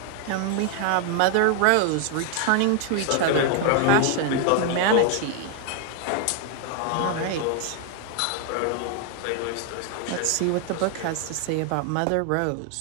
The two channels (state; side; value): different; both; correlation 0.00